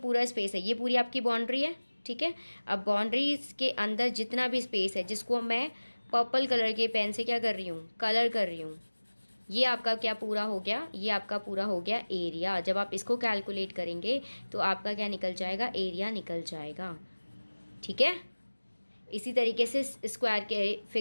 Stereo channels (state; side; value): inverted; both; correlation -1.00